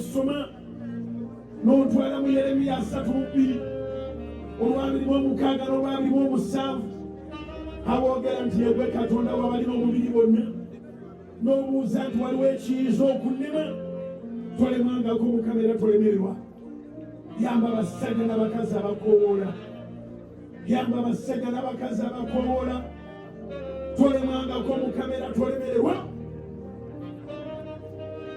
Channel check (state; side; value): identical; both; correlation 1.00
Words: n'otwala mu Yeremiya 3:2 olw'abiri-mu-6 n'olw'abiri-mu-7 aboogera nti yegwe Katonda w'abalina omubiri bonna. N'obuuza nti waliwo ekiyinza okunnema. Tolemangako Mukama era tolemererwa. Yamba abasajja n'abakazi abakoowoola. Yamba abasajja n'abakazi abakoowoola. Tolemangako Mukama era tolemererwa.